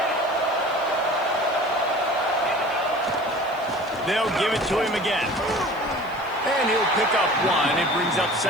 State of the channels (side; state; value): left; noise; hiss, 26 dB below the sound